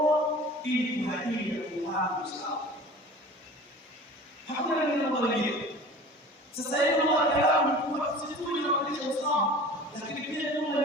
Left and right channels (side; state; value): both; normal; correlation 0.41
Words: ili kuhadili kufahamu sawa. Hakuna neno mwingine. Sasa hivi ndio kalamu kwa sisi tunafundisha usawa, lakini pia